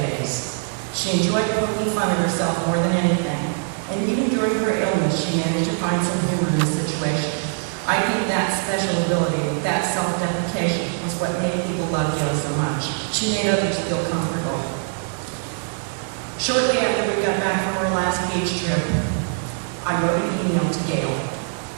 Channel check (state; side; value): silent; left; digital silence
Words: She enjoyed poking fun at herself more than anything, and even during her illness, she managed to find some humor in the situation. I think that special ability, that self-deprecation, was what made people love Gail so much. She made others feel comfortable. Shortly after we got back from our last beach trip, I wrote an email to Gail,